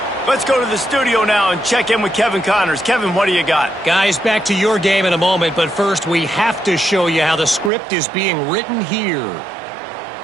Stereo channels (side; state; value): left; drops out; at 7.7 s